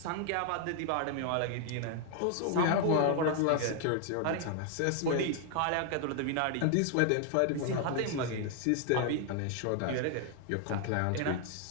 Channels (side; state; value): both; different; correlation 0.00